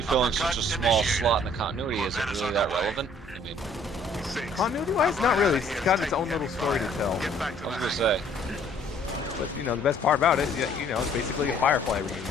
filling such a small slot in the continuity, is it really that relevant? I mean, continuity-wise, not really. It's got its own little story to tell. I was gonna say. But you know, the best part about it, you know, it's basically a Firefly reunion.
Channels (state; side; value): normal; both; correlation 0.59